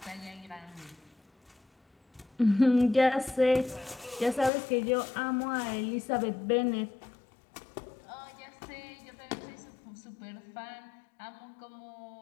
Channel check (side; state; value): right; drops out; at 4.5 s